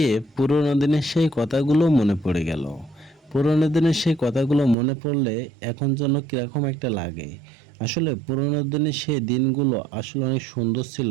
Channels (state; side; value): drops out; left; at 4.8 s